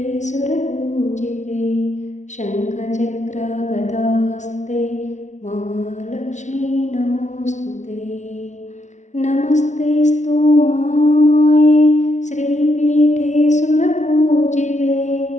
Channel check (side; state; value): right; late; 0.34 ms